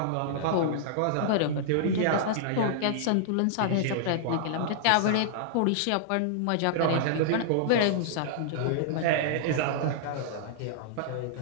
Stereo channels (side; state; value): both; different; correlation -0.01